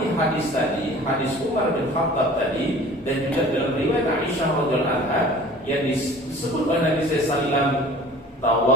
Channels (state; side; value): normal; both; correlation 0.46